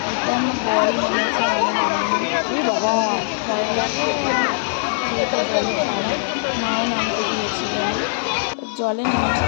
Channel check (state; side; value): silent; right; digital silence